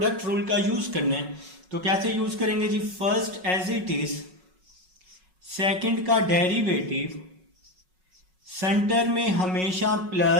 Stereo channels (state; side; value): late; left; 5.4 ms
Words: रूल का यूज करना है। तो कैसे यूज करेंगे जी? First as it is, second का डेरिवेटिव, सेंटर में हमेशा